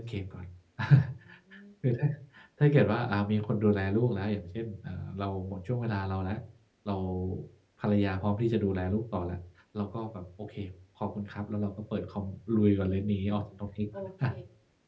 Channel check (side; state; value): both; identical; correlation 1.00